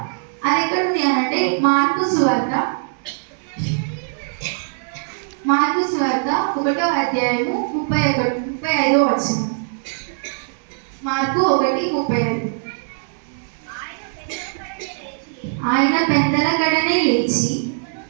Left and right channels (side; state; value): left; silent; digital silence